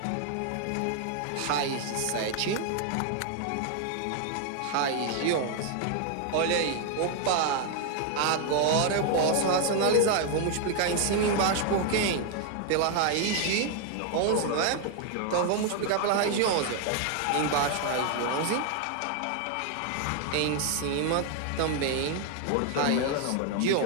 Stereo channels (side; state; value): both; different; correlation 0.00